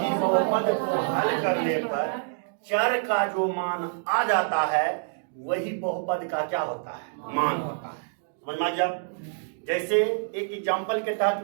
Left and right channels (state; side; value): silent; left; digital silence